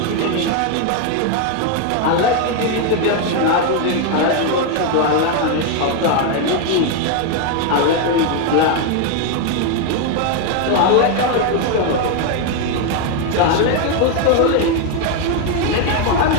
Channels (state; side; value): different; both; correlation 0.01